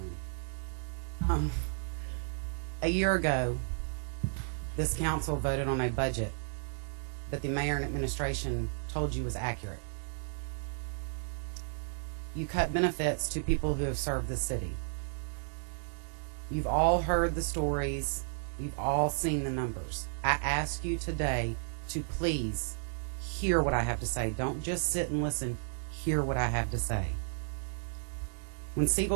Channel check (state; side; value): silent; left; digital silence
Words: A year ago, this council voted on a budget that the mayor and administration told you was accurate. You cut benefits to people who have served the city. You've all heard the stories. You've all seen the numbers. I ask you today to please hear what I have to say. Don't just sit and listen. Hear what I have to say. When